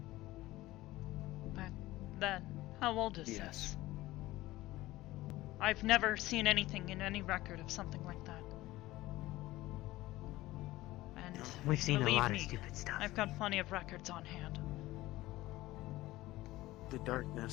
Back then? How old is Yes. this? I've never seen anything in any record of something like that. And We've seen a believe lot me, of stupid stuff. I've got plenty of records on hand. The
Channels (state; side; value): quieter; right; 17.5 dB